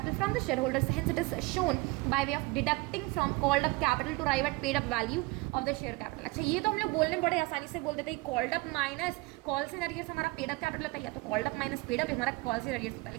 from the share holders, hence it is shown by way of deducting from called up capital to arrive at paid up value of the share capital. अच्छा ये तो हम लोग बोलने बड़े आसानी से बोल देते हैं, called up minus calls in arrears हमारा पेड अप कैपिटल होता है, या तो called up minus paid up हमारा कॉल्स इन अरियर्स होता है।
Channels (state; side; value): quieter; left; 23.5 dB